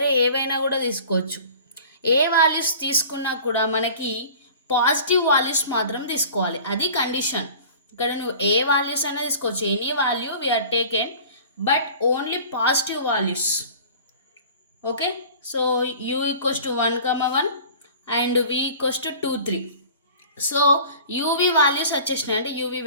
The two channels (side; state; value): both; inverted; correlation -0.43